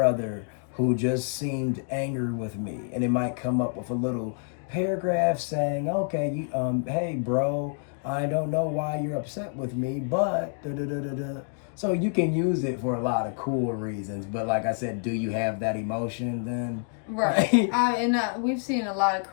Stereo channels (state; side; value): silent; right; 60 dB below the other